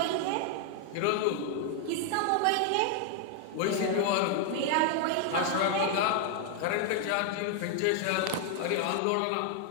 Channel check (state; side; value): different; both; correlation 0.00